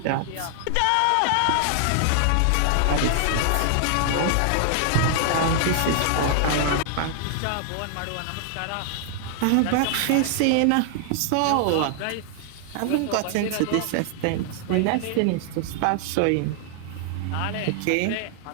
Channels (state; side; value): different; both; correlation 0.00